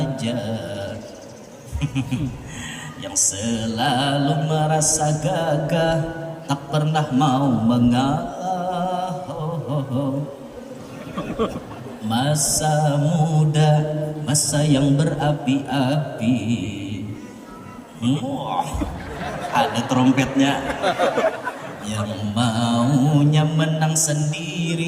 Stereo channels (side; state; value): both; identical; correlation 1.00